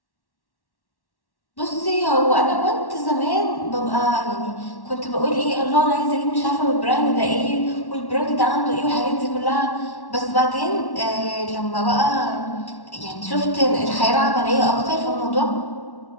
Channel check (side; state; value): right; late; 1.1 ms